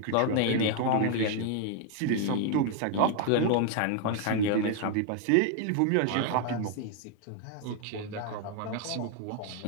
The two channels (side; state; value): both; different; correlation 0.00